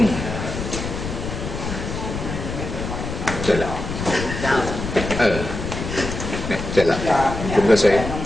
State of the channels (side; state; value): left; noise; rumble, 6 dB below the sound